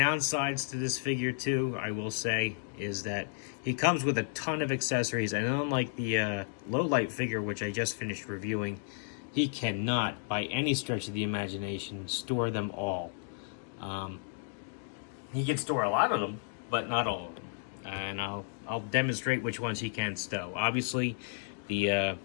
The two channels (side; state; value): right; silent; digital silence